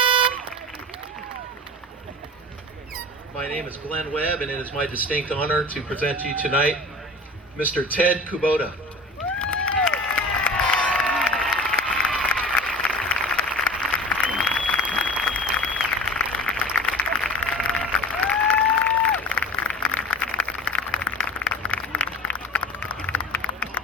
My name is Glenn Webb, and it is my distinct honor to present to you tonight Mr. Ted Kubota.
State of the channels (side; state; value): both; normal; correlation 0.37